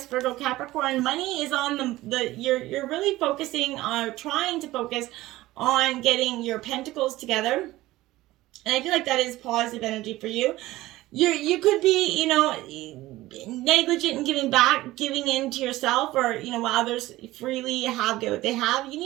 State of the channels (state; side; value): quieter; left; 17.3 dB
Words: Virgo, Capricorn. Money is on you're really focusing on trying to focus on getting your pentacles together. And I feel like that is positive energy for you. You could be, negligent in giving in to yourself, or, while others freely get what they have. You